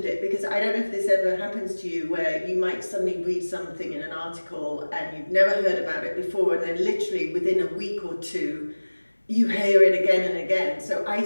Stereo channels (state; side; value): inverted; both; correlation -1.00